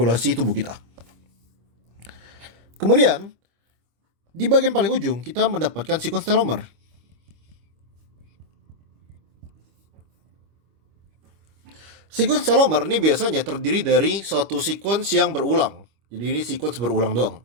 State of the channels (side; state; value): left; late; 25 ms